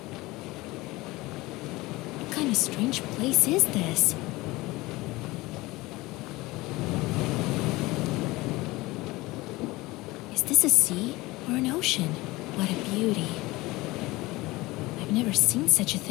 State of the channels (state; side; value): quieter; right; 20.7 dB